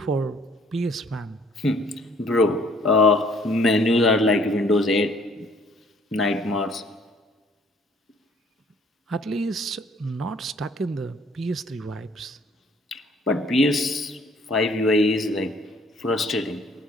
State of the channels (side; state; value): both; normal; correlation 0.59